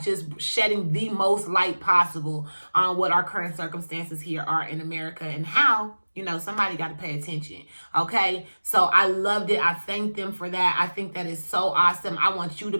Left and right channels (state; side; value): inverted; both; correlation -1.00